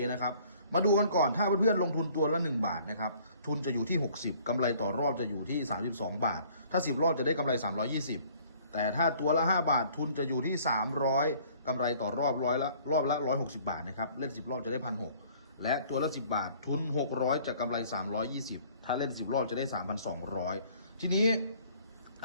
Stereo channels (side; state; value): both; inverted; correlation -0.56